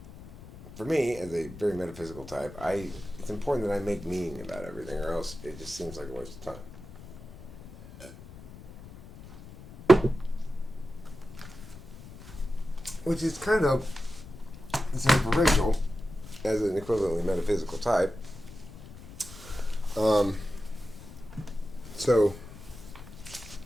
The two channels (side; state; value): left; noise; rumble, 16 dB below the sound